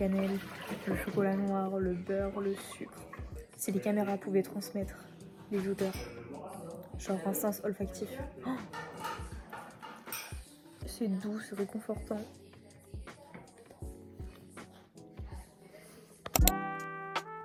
le chocolat noir, le beurre, le sucre. Si les caméras pouvaient transmettre les odeurs, genre un sens olfactif. Oh, c'est doux, c'est réconfortant.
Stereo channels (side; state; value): both; identical; correlation 1.00